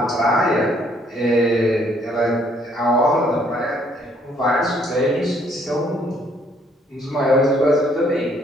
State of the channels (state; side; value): normal; both; correlation 0.65